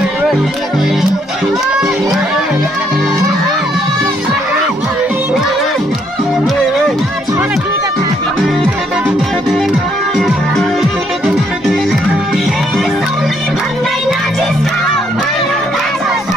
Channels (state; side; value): normal; both; correlation 0.71